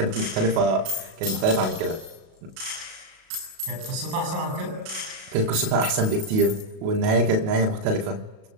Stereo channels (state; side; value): late; left; 37 ms